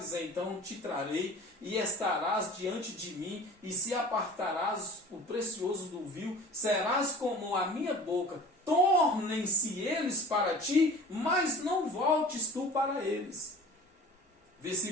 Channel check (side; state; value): both; normal; correlation 0.43